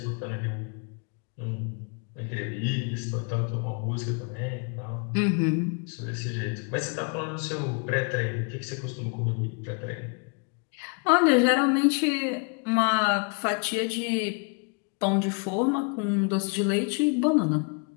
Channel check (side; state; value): right; quieter; 36.2 dB